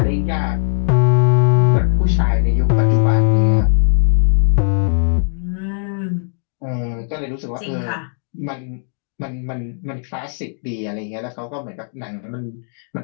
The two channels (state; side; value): silent; right; digital silence